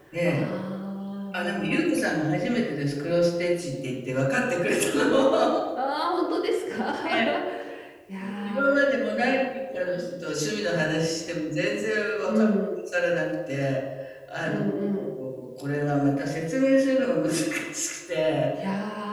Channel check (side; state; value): both; identical; correlation 1.00